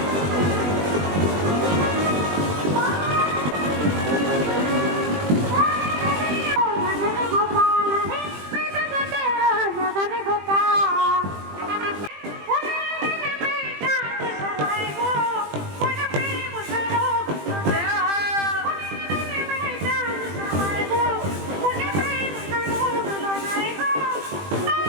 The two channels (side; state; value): left; late; 20 ms